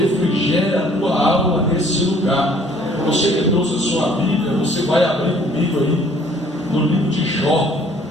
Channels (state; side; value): normal; both; correlation 0.58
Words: a tua alma nesse lugar. Você que trouxe a sua Bíblia, você vai abrir comigo aí no livro de Jó.